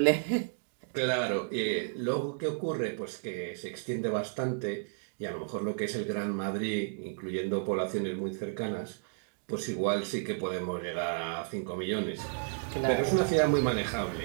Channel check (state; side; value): silent; left; digital silence